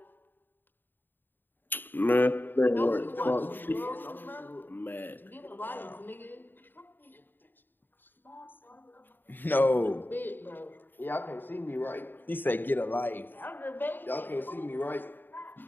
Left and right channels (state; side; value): late; right; 0.093 ms